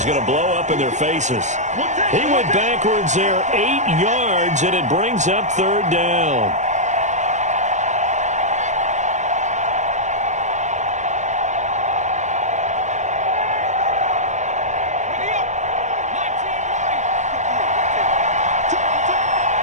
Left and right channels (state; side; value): late; left; 0.34 ms